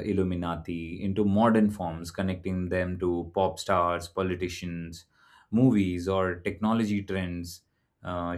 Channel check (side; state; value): both; identical; correlation 1.00